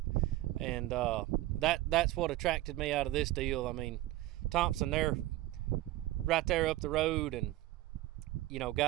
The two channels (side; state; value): left; quieter; 16.5 dB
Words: And that's what attracted me out of this deal. I mean, Thompson, they're right there up the road, and you know,